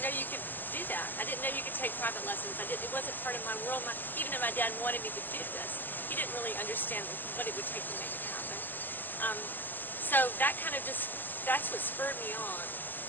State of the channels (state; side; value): late; right; 0.089 ms